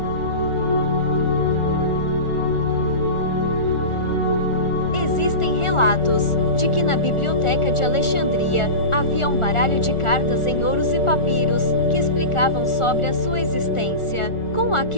Existem relatos de que na Biblioteca de Alexandria havia um baralho de cartas em ouros e papiros que explicavam sobre a sua existência. Com a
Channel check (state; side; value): late; right; 1.4 ms